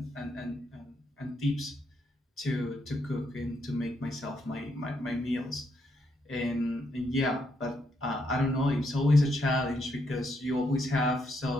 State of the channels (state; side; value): normal; both; correlation 0.77